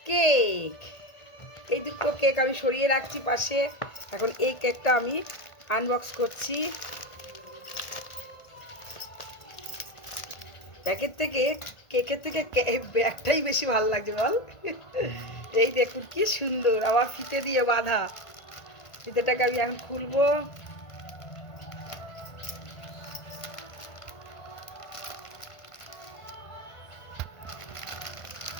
কেক। এই দুটো কেক আমি সরিয়ে রাখছি পাশে। এখন এই কেকটা আমি আনবক্স করছি। কেকের থেকে ব্যাগটাই বেশি ভালো লাগছে বল। এই দেখুন কি সুন্দর, আবার ফিতে দিয়ে বাঁধা। ফিতেটাকে আমি এখন খুলবো।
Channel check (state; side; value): late; right; 1.5 ms